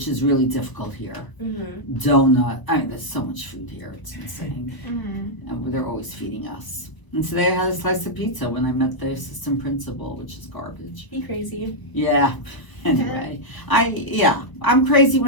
is really difficult here. Donut. I mean, there's so much food here. It's insane. And they're always feeding us. And today I had a slice of pizza when I met the assistant principal, which is garbage. Be crazy. Yeah. Anyway, I'm crazy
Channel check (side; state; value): right; late; 1.0 ms